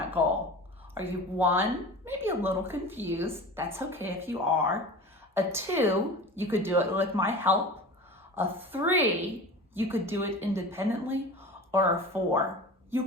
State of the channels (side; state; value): both; normal; correlation 0.35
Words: goal? Are you 1, maybe a little confused? That's okay if you are. A 2, you could do it with my help. A 3, you could do it independently. Or a 4, you